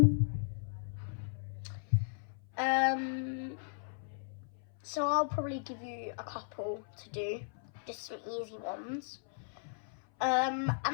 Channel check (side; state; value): right; silent; 54 dB below the other